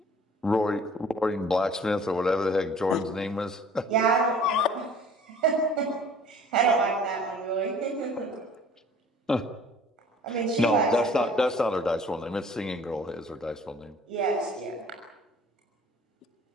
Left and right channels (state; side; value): normal; both; correlation 0.51